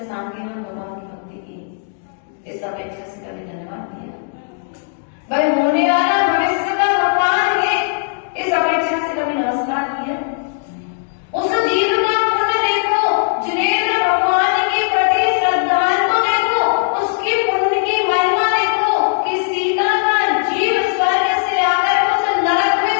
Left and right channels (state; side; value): silent; right; digital silence